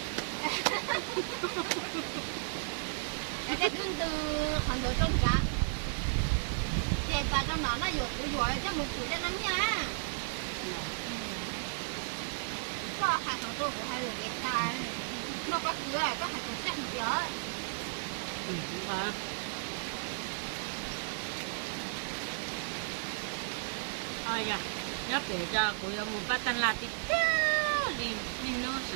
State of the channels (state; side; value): silent; left; digital silence